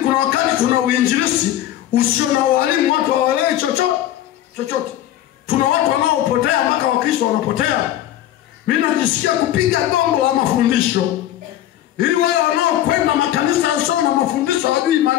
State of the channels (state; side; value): quieter; right; 12.9 dB